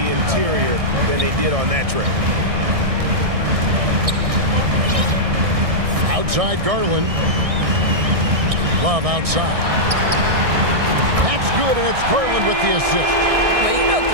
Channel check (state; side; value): late; left; 1.6 ms